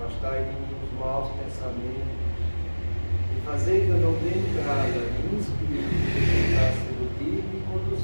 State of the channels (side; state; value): both; inverted; correlation -1.00